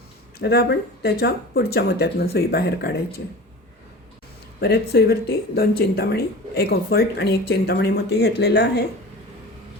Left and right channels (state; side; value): normal; both; correlation 0.36